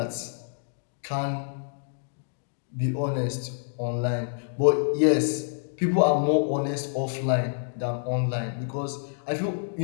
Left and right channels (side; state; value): right; silent; digital silence